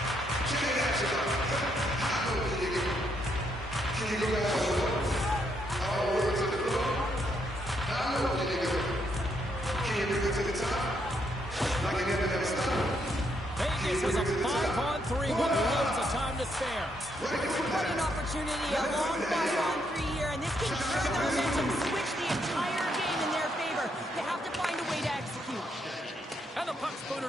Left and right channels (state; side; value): normal; both; correlation 0.76